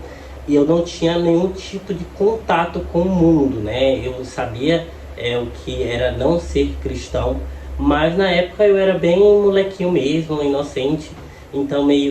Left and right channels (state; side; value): identical; both; correlation 1.00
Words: e eu não tinha nenhum tipo de contato com o mundo, né? Eu sabia o que era não ser cristão, mas na época eu era bem molequinho mesmo, inocente, então